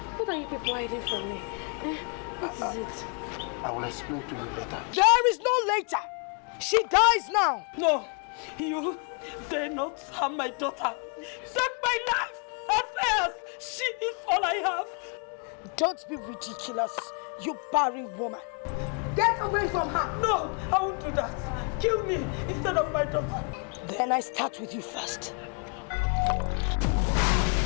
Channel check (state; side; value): quieter; right; 38.5 dB